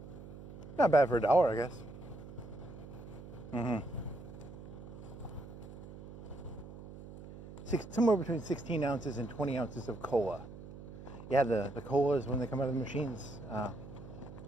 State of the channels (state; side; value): noise; right; hum, 14 dB below the sound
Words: Not bad for $1, I guess. Somewhere between 16 ounces and 20 ounces of cola. Yeah, the colas when they come out of the machines,